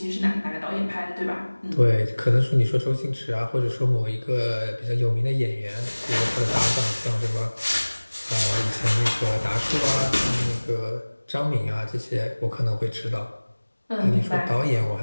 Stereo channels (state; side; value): inverted; both; correlation -1.00